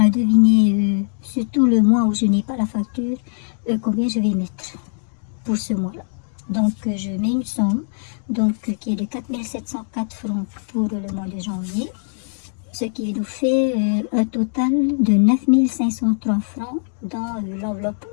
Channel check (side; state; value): right; silent; digital silence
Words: à deviner, surtout le mois où je n'ai pas la facture, combien je vais mettre pour ce mois-là. Donc, je mets une somme qui est de 4 704 francs pour le mois de janvier, ce qui nous fait un total de 9 503 francs dans l'enveloppe